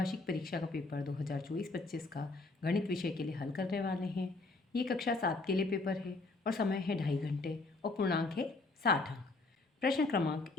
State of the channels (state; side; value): quieter; right; 3.4 dB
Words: परीक्षा का पेपर 2024-25 का गणित विषय के लिए हल करने वाले हैं। ये कक्षा 7 के लिए पेपर है और समय है 2.5 घंटे और पूर्णांक है 60 अंक। प्रश्न क्रमांक